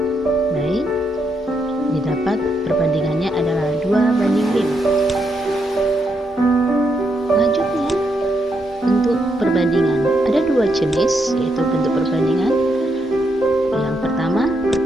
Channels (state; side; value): normal; both; correlation 0.79